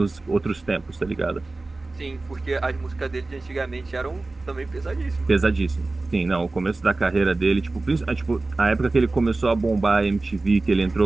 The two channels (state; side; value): quieter; left; 3.2 dB